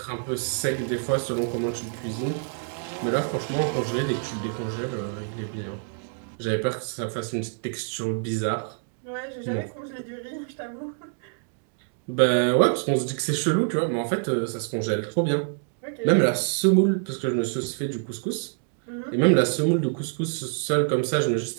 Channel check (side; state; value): left; silent; 58 dB below the other